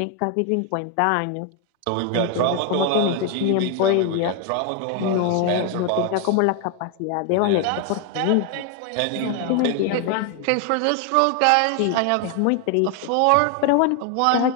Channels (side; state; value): both; different; correlation 0.01